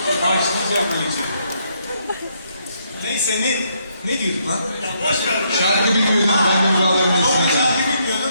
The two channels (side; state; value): both; inverted; correlation -0.73